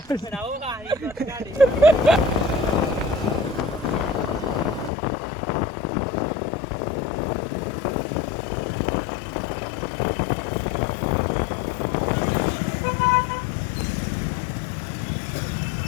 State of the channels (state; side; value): drops out; right; at 4.9 s